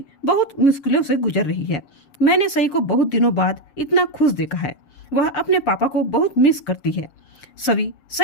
बहुत मुश्किलों से गुजर रही है। मैंने सई को बहुत दिनों बाद इतना खुश देखा है। वह अपने पापा को बहुत मिस करती है। सभी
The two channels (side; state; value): right; late; 7.1 ms